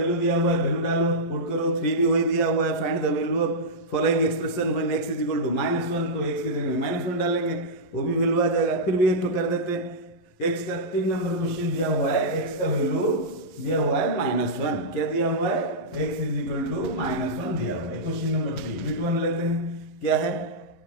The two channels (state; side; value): late; right; 11 ms